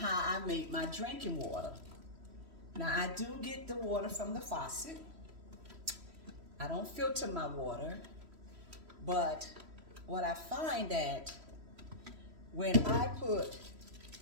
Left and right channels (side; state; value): left; late; 3.1 ms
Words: I make my drinking water. Now I do get the water from the faucet. I don't filter my water, but what I find that when I put